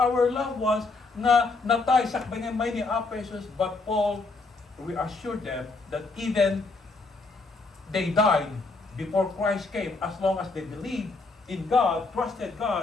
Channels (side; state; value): right; quieter; 3.7 dB